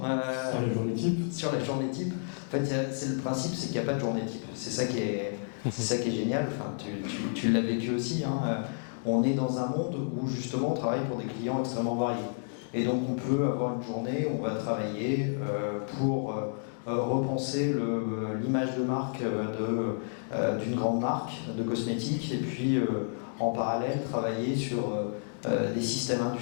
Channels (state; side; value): silent; right; digital silence